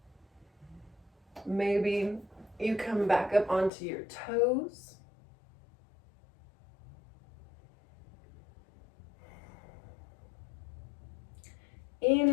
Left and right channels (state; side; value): drops out; right; at 3.7 s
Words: Maybe you come back up onto your toes.